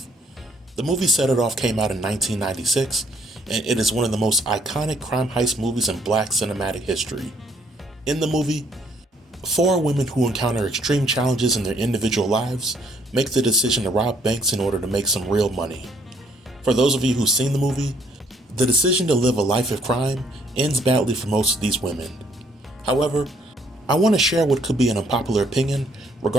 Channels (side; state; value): both; normal; correlation 0.66